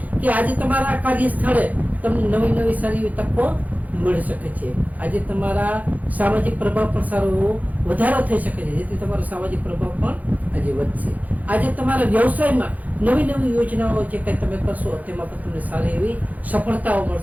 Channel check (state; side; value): late; left; 0.078 ms